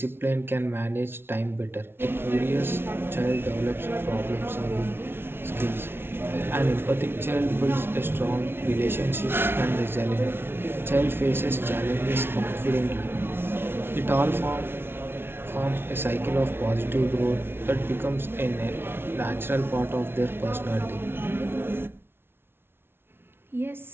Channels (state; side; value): late; left; 0.11 ms